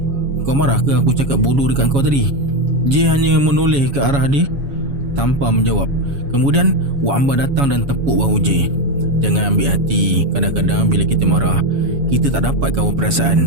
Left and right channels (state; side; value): late; left; 7.2 ms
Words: Kau marah ke aku cakap bodoh dekat kau tadi? J hanya menoleh ke arah dia tanpa menjawab. Kemudian Wak Amba datang dan tepuk bahu J. "Jangan ambil hati. Kadang-kadang bila kita marah, kita tak dapat kawal